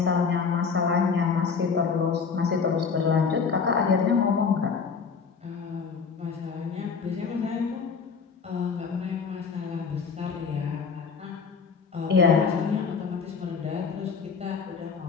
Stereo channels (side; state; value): right; quieter; 5.6 dB